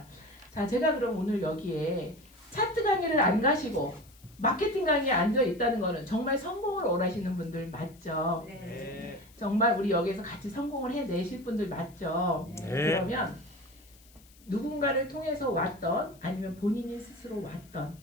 자, 제가 그럼 오늘 여기에 차트 강의를 안 가시고 마케팅 강의에 앉아 있다는 거는 정말 성공을 원하시는 분들 맞죠? 네. 정말 우리 여기서 같이 성공을 해내실 분들 맞죠? 네. 그러면 누군가를 통해서 왔던 아니면 본인이 스스로 왔던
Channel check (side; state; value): left; noise; hiss, 26 dB below the sound